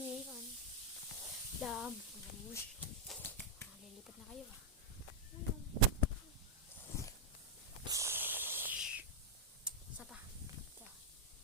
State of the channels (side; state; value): both; normal; correlation -0.02